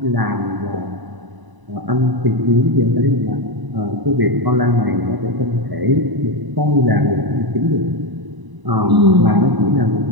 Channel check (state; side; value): late; left; 1.0 ms